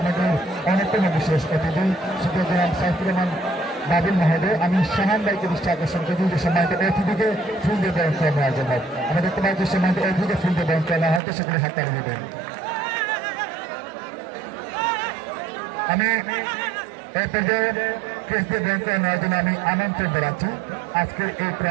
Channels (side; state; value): left; drops out; at 11.2 s